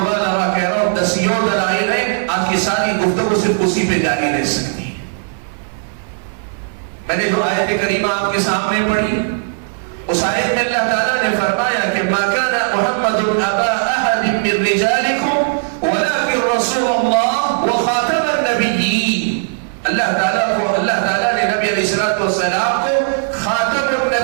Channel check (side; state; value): left; silent; digital silence